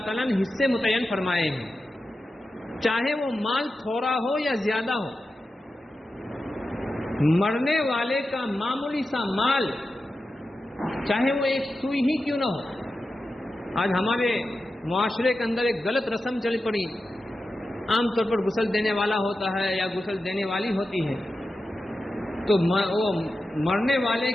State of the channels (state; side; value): normal; both; correlation 0.92